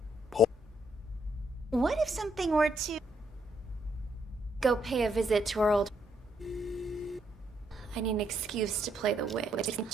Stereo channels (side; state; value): both; normal; correlation 0.74